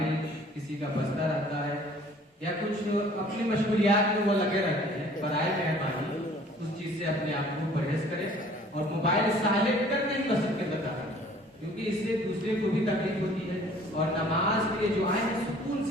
کسی کا بجتا رہتا ہے، یا کچھ اپنی مشغولیات میں وہ لگے رہتے ہیں۔ برائے مہربانی اس چیز سے اپنے آپ کو پرہیز کریں اور موبائل سائلنٹ کر کے مسجد کے اندر آئیں، کیونکہ اس سے دوسرے کو بھی تکلیف ہوتی ہے۔ اور نماز کے لیے جو آئیں سکون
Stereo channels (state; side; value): normal; both; correlation 0.53